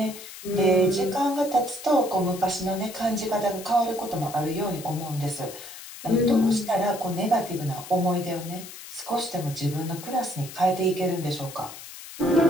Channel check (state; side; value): noise; left; hiss, 14 dB below the sound